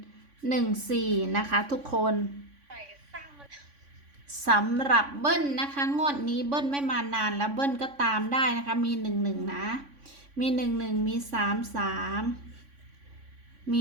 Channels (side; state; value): left; late; 3.5 ms